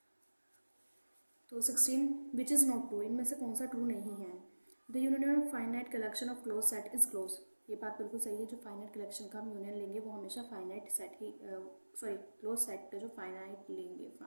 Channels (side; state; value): both; inverted; correlation -1.00